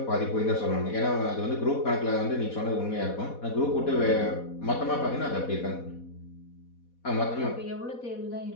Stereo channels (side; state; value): right; late; 4.1 ms